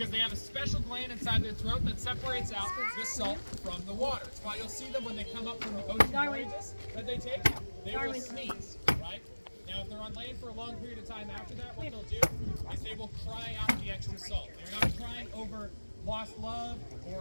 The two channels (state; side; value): inverted; both; correlation -1.00